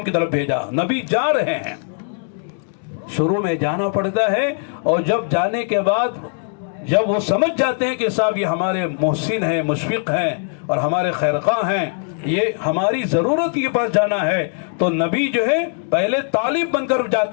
کی طرف بھیجا. نبی جا رہے ہیں, شروع میں جانا پڑتا ہے, اور جب جانے کے بعد جب وہ سمجھ جاتے ہیں کہ صاحب یہ ہمارے محسن ہیں, مشفق ہیں اور ہمارے خیرخواہ ہیں, یہ ہماری ضرورت کے پاس جانا ہے, تو نبی جو ہے پہلے طالب بن کر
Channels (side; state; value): right; silent; 61 dB below the other